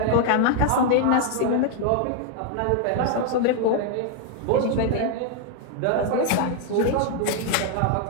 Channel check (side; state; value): both; different; correlation 0.00